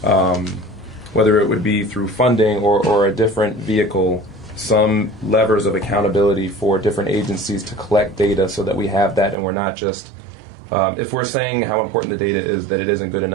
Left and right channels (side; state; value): left; drops out; at 9.3 s